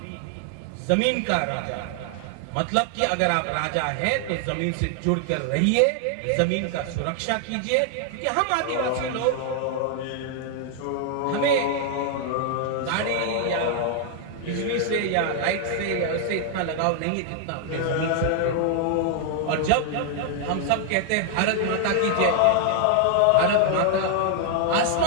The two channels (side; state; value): both; different; correlation 0.00